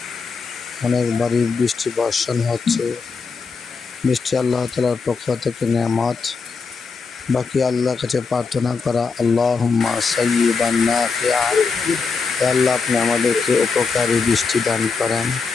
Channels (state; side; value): quieter; right; 4.9 dB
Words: অনেকবারই বৃষ্টি বর্ষণ হচ্ছে। বৃষ্টি আল্লাহ তাআলার পক্ষ থেকে নেয়ামত। বাকি আল্লাহর কাছে প্রার্থনা করা, আল্লাহুম্মা সাইয়্যিবান নাফিআ। আল্লাহ, আপনি আমাদেরকে উপকারী বৃষ্টি দান করেন,